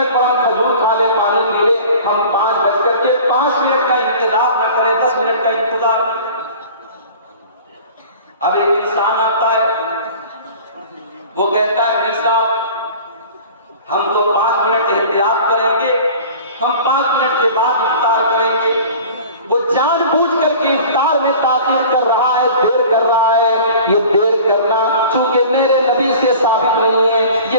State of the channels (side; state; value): both; inverted; correlation -0.42